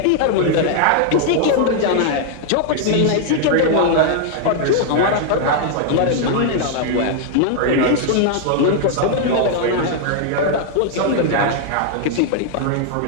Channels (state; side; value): different; both; correlation 0.00